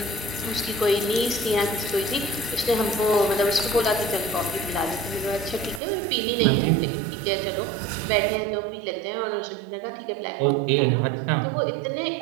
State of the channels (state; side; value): drops out; left; at 5.8 s